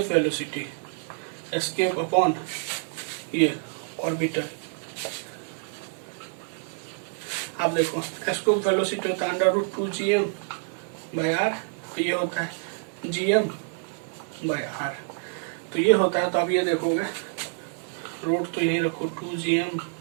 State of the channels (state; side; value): silent; left; 60 dB below the other